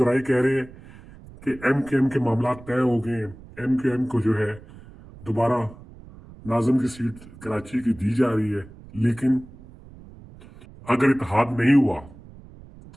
कह रहे हैं कि एमकेएम के मामला तय हो गए हैं, एमकेएम को जो है दोबारा नाज़िम की सीट कराची की दी जा रही है। लेकिन अगर इत्तेहाद नहीं हुआ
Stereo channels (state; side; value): noise; right; rumble, 20 dB below the sound